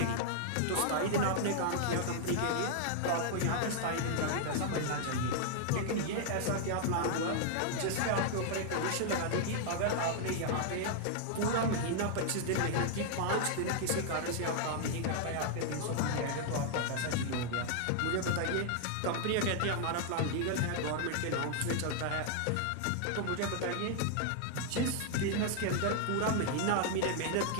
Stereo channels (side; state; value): both; different; correlation 0.00